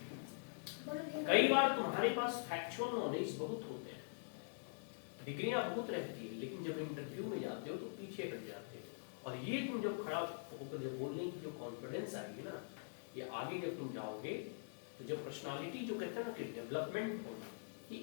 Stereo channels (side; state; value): right; silent; digital silence